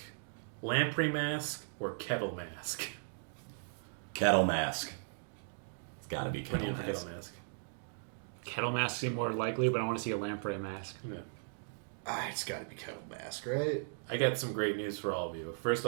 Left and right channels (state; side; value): silent; left; digital silence